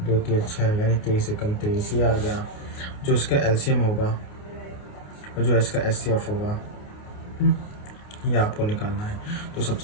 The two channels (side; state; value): right; late; 29 ms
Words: 2 3 6, यानी 23 एकम 23 ये आ गया। जो इसका एलसीएम होगा और जो इसका एचसीएफ होगा ये आपको निकालना है। तो